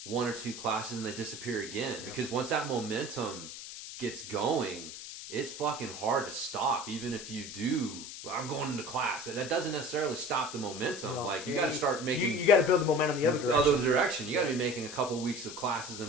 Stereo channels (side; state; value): left; noise; hiss, 10 dB below the sound